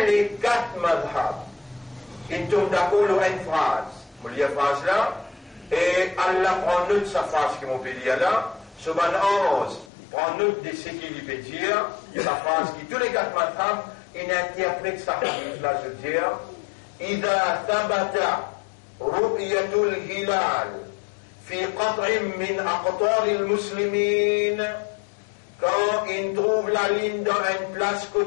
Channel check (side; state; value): right; drops out; at 9.9 s